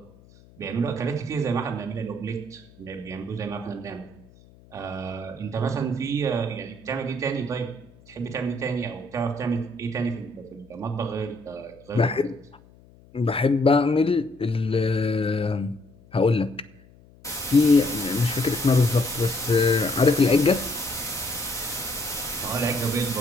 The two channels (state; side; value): noise; left; hum, 26 dB below the sound